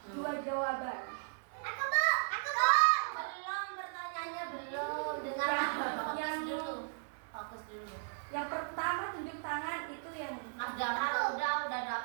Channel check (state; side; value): silent; left; 54 dB below the other